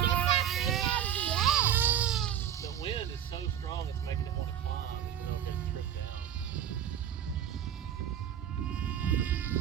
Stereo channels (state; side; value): quieter; left; 10.0 dB